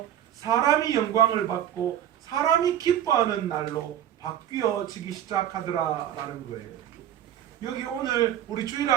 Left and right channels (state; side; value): quieter; left; 11.0 dB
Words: 사람이 영광을 받고 사람이 기뻐하는 날로 바뀌어지기 시작하더라라는 거예요. 여기 오늘 우리